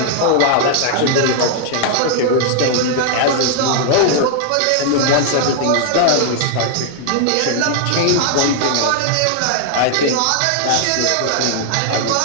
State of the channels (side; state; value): both; different; correlation 0.00